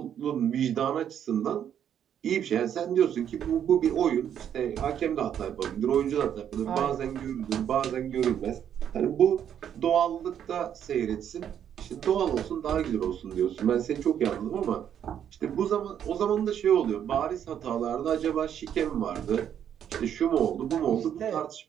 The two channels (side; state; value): left; quieter; 9.3 dB